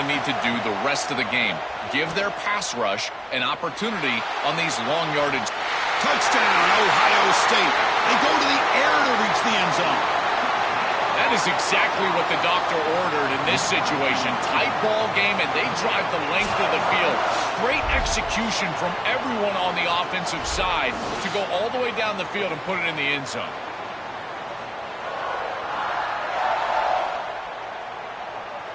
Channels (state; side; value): identical; both; correlation 1.00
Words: need to do the rest of the game. Give their pass rush an opportunity on these long yardage. Touchdown, Ohio State. They go to the air to reach the end zone. That is exactly what the doctor ordered in this situation. Tight ball game, and they drive the length of the field. Great execution from everyone on the offensive side to go all the way down the field and put it in the end zone.